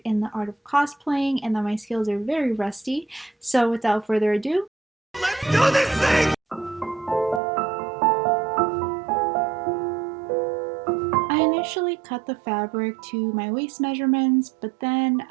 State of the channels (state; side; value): drops out; left; at 7.4 s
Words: in the art of cosplaying and that my skills are very rusty. So without further ado, let's do this thing! I initially cut the fabric to my waist measurements, but then